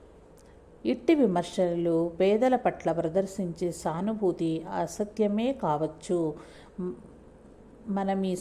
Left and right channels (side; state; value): both; identical; correlation 1.00